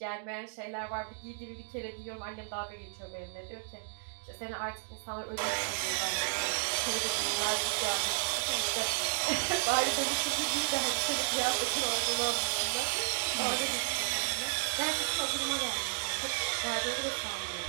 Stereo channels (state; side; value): silent; left; digital silence